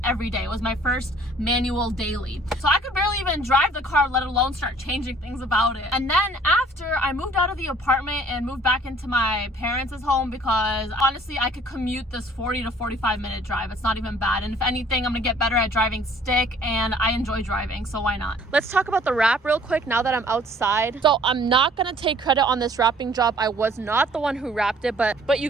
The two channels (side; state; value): both; normal; correlation 0.55